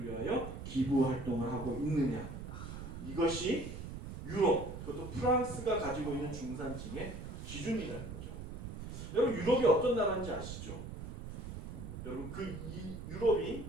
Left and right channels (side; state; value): right; noise; rumble, 8 dB below the sound